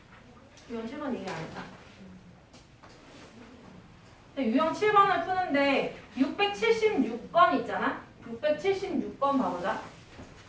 유형 7번 얘기 안 했다. 유형 7번을 푸는데 676번 있잖아? 676번 봐보자.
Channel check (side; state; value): both; identical; correlation 1.00